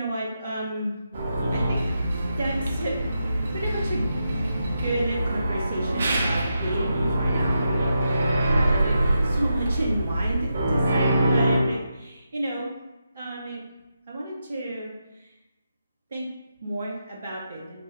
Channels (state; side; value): inverted; both; correlation -0.85